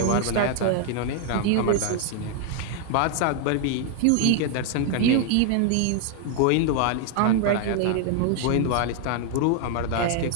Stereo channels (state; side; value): different; both; correlation 0.00